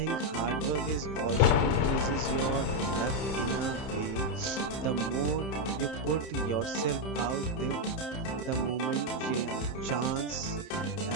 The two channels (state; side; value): late; right; 31 ms